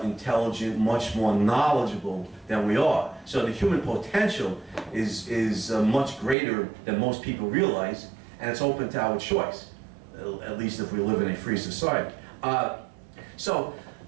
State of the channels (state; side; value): drops out; left; at 6.4 s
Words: much more knowledgeable than we are. So the human potential is much greater than most people realize, and it's open to our choice, at least if we live in a free society. I